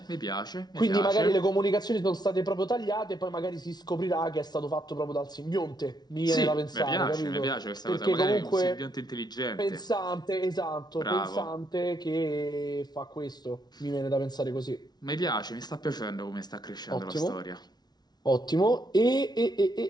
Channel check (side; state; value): right; late; 0.19 ms